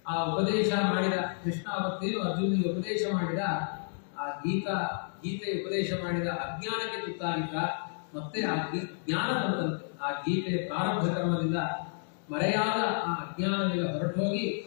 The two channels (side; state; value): right; silent; digital silence